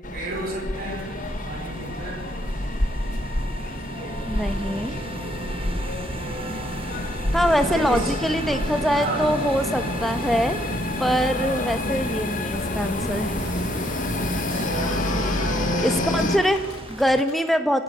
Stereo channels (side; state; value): both; normal; correlation 0.71